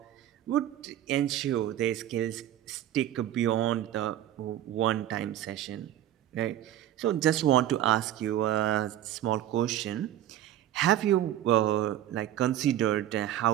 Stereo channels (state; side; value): quieter; left; 12.2 dB